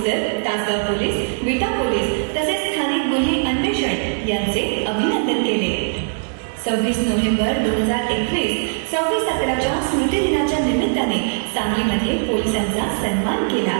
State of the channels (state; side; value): silent; left; digital silence